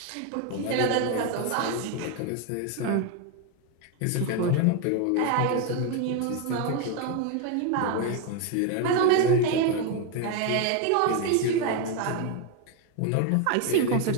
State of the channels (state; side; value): different; both; correlation 0.02